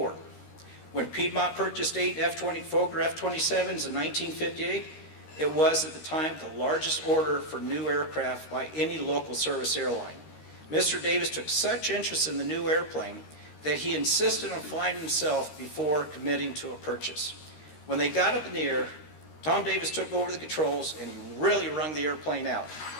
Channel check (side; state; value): right; late; 13 ms